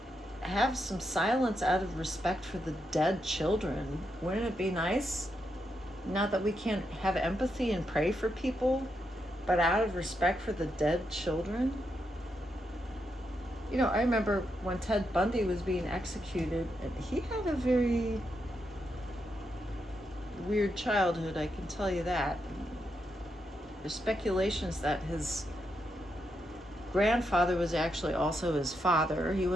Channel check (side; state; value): both; normal; correlation 0.83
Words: have some silence out of respect for the dead children. Wouldn't it be nice? Not that we can't have empathy and pray for people, but out of respect for the dead children. I remember when Ted Bundy was being executed, and he had a very weird childhood, I can tell you that. There's speculations that his grandfather was actually also his father. He